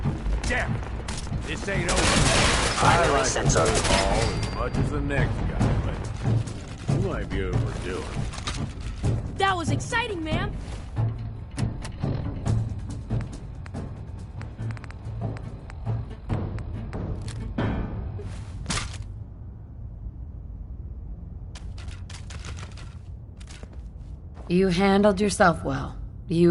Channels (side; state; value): both; identical; correlation 1.00